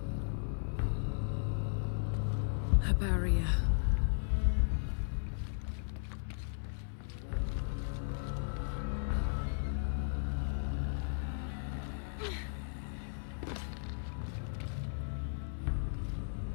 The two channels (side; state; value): right; silent; 54 dB below the other